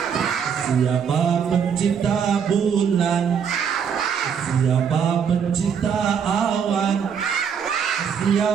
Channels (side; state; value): left; quieter; 7.2 dB